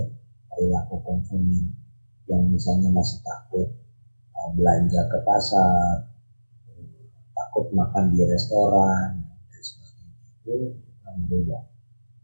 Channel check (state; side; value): inverted; both; correlation -1.00